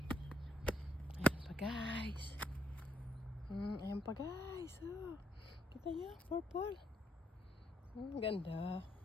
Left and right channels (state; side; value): normal; both; correlation 0.74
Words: Guys, ayan pa guys, oh. Kita nyo, purple. Ang ganda,